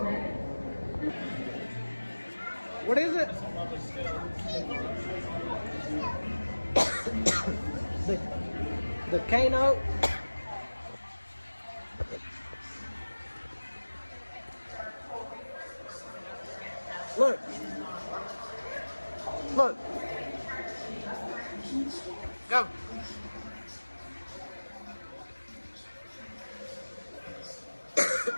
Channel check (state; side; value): inverted; both; correlation -1.00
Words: What is it? The Kano. Look. Look. Go.